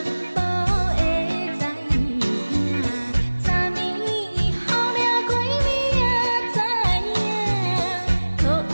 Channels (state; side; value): inverted; both; correlation -1.00